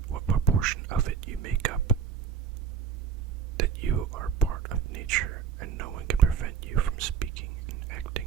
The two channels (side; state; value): left; quieter; 7.6 dB